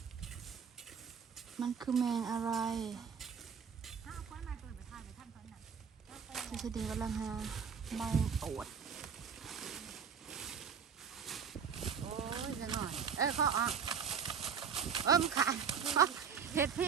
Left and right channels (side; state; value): left; quieter; 6.8 dB